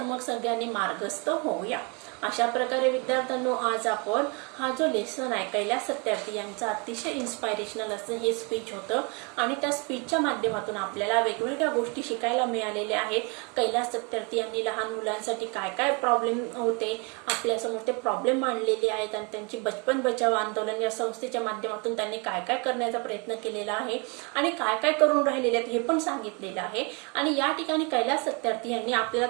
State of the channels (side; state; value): left; quieter; 31.9 dB